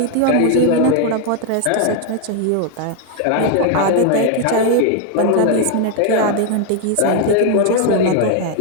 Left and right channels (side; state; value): both; different; correlation 0.00